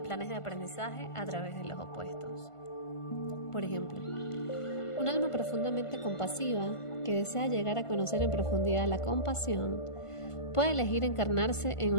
planes de aprendizaje a través de los opuestos. Por ejemplo, un alma profundamente compasiva que desea llegar a conocer en profundidad la compasión puede elegir encarnarse en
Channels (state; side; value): late; right; 1.5 ms